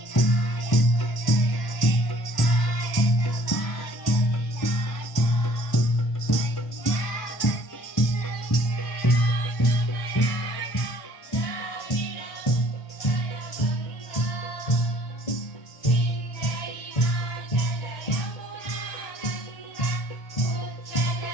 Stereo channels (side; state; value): right; late; 1.1 ms